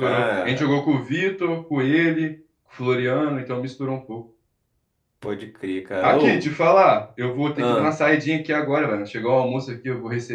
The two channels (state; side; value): identical; both; correlation 1.00